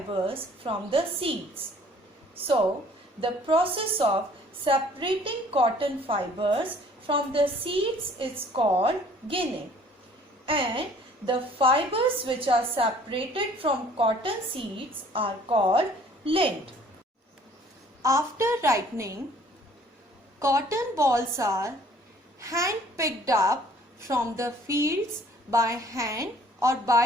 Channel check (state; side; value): normal; both; correlation 0.55